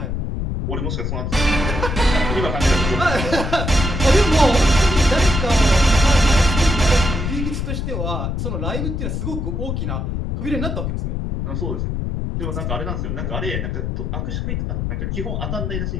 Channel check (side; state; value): left; noise; rumble, 2 dB below the sound